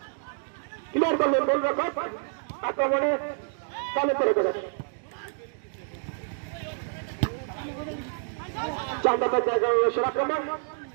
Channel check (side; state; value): left; silent; digital silence